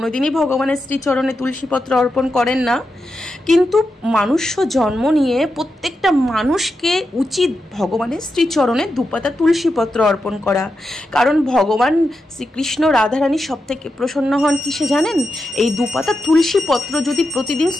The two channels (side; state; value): both; normal; correlation 0.88